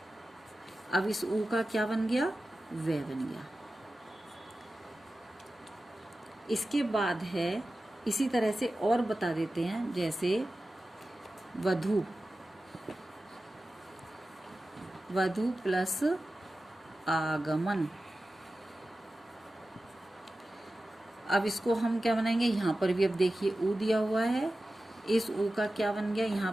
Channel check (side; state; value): both; normal; correlation 0.94